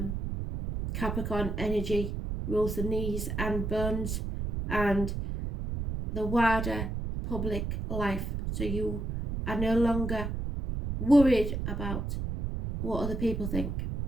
Capricorn energy rules the knees and bones and the wider public life, so you are no longer worried about what other people think,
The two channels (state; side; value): noise; right; rumble, 3 dB below the sound